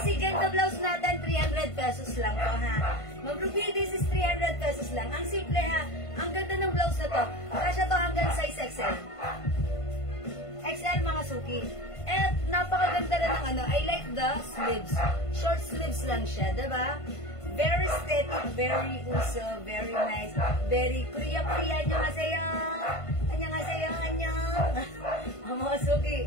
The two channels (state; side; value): late; right; 1.5 ms